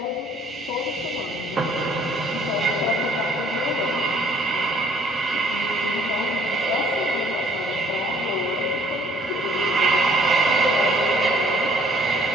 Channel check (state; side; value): normal; both; correlation 0.59